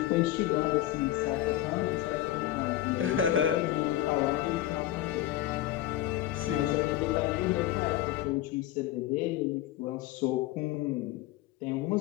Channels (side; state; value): right; quieter; 13.9 dB